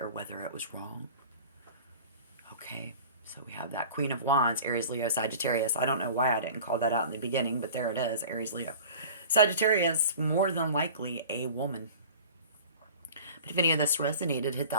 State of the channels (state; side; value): inverted; both; correlation -0.40